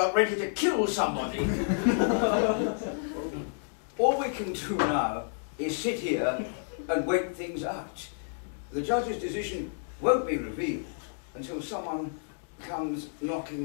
ready to kill somebody. All we can do now is sit here and wait things out. The judge's decision won't be revealed until someone comes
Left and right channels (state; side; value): silent; right; digital silence